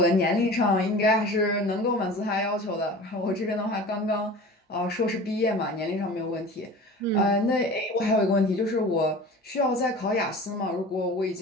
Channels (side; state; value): both; normal; correlation 0.38